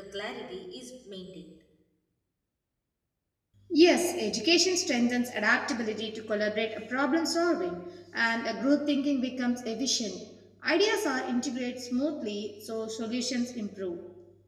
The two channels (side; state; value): both; identical; correlation 1.00